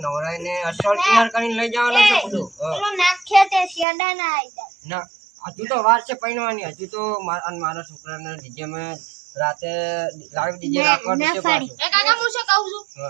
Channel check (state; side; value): drops out; left; at 3.9 s